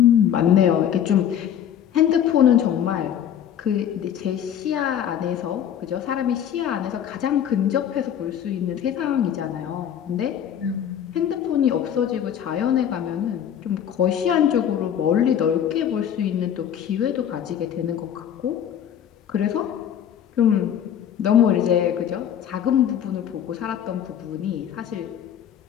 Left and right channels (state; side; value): quieter; right; 9.5 dB